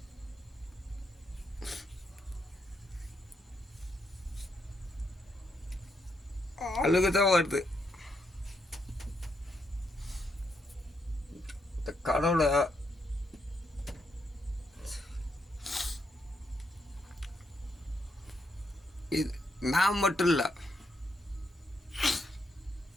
அழுகு தான் வருது. இந்த கடவுளை இது நான் மட்டும் இல்லை,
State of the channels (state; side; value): normal; both; correlation 0.78